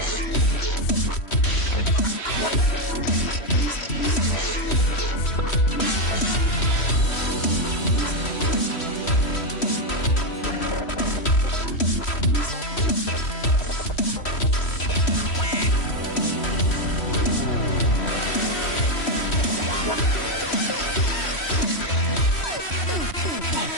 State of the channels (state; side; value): late; right; 3.1 ms